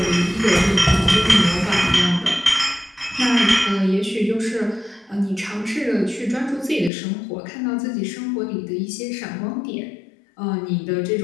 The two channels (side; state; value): right; drops out; at 6.9 s